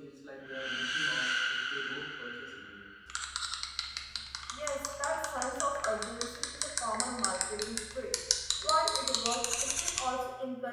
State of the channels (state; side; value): identical; both; correlation 1.00